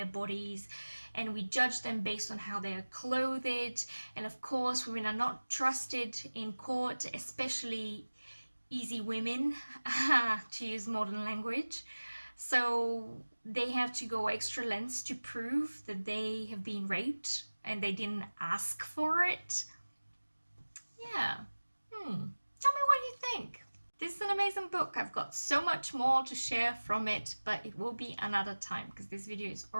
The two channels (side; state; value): both; inverted; correlation -1.00